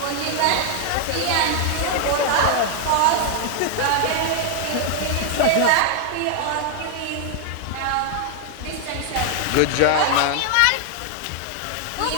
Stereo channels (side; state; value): both; different; correlation 0.00